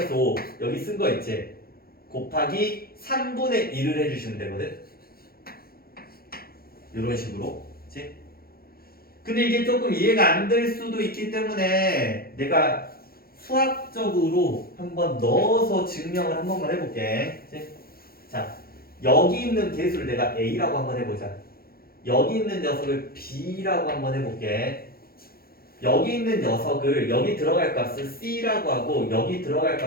5 여기 쓴 거 있지? 곱하기 3분의 1을 해주시면 되거든. 이런 식으로. 그치? 근데 이게 조금 이해가 안 될 수도 있기 때문에 내가 수학적으로 한번 넣어서 증명을 한 번만 해볼게. 그치? 자, 여기 있는 개수를 내가 A라고 한번 해보자. 여기 있는 녀석을 B라고 한번 해볼게. 여기 있는 녀석을 여기 들어갈 값을 C라고 하고 여기 들어갈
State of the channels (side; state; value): right; late; 0.44 ms